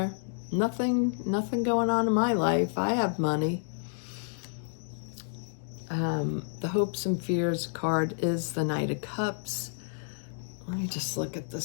Nothing going on in my life. I have money. The hopes and fears card is the Knight of Cups. Let me just look at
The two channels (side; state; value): right; silent; digital silence